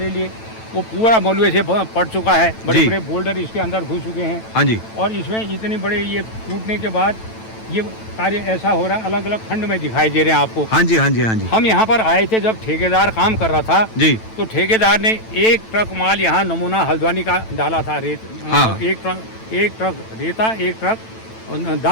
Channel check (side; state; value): right; late; 9.1 ms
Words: लिए वो पूरा मलबे से पड़ चुका है, बड़े जी। बड़े बोल्डर इसके अंदर घुस चुके हैं। हाँ जी। और इसमें इतने बड़े ये टूटने के बाद ये कार्य ऐसा हो रहा है, अलग अलग खंड में दिखाई दे रहे हैं आपको। हाँ जी, हाँ जी, हाँ जी। हम यहाँ पर आए थे जब ठेकेदार काम कर रहा था, जी। तो ठेकेदार ने एक ट्रक माल यहाँ नमूना हल्द्वानी का डाला था, रेत। हाँ। एक ट्रक रेता, एक ट्रक